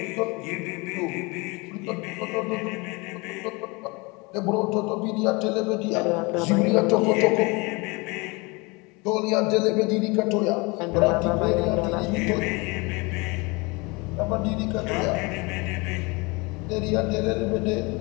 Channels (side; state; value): right; quieter; 26.7 dB